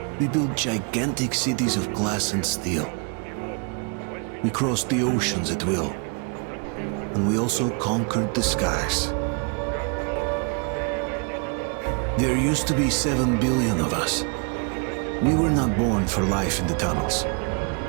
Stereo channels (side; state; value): left; quieter; 37.6 dB